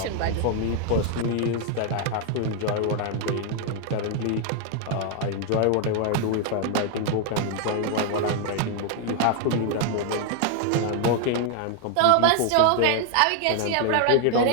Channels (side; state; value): both; different; correlation 0.00